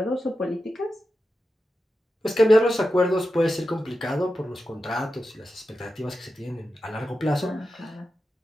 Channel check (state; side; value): normal; both; correlation 0.91